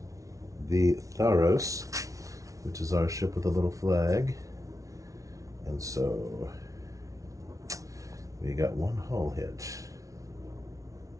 the Tharos, which is our ship with a little flag. And so we got one hull hit.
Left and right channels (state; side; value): late; left; 0.16 ms